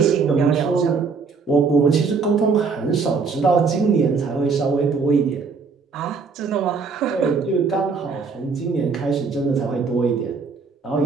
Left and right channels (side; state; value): left; quieter; 5.0 dB